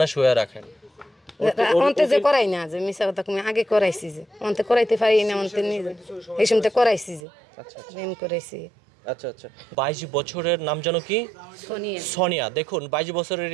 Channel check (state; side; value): drops out; left; at 7.2 s